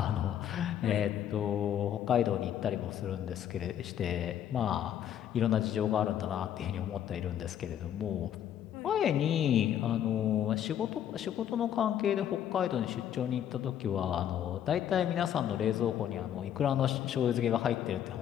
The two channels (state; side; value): quieter; right; 10.1 dB